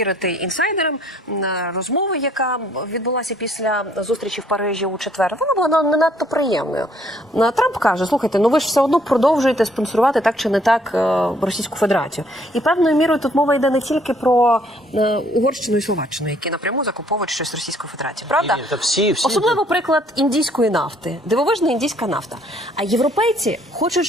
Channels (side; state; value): both; normal; correlation 0.63